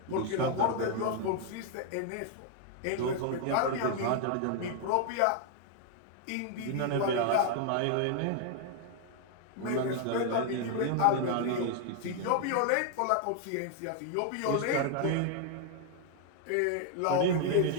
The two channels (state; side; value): different; both; correlation 0.00